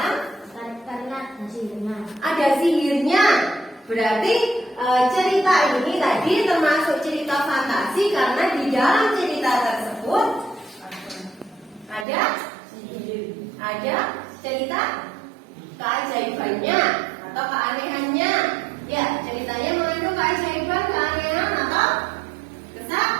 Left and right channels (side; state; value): left; drops out; at 12.1 s